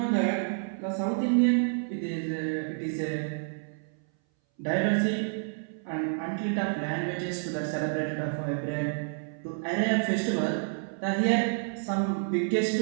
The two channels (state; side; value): silent; left; 58 dB below the other